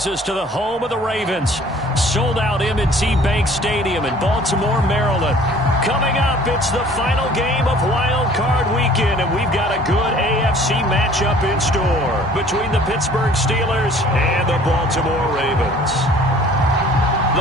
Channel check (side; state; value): both; normal; correlation 0.52